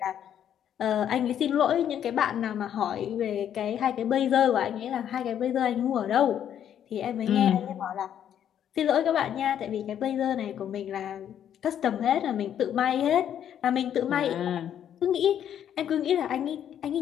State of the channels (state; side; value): quieter; right; 9.8 dB